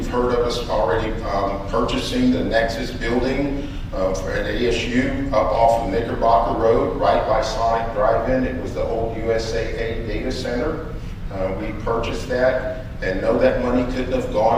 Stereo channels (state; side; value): identical; both; correlation 1.00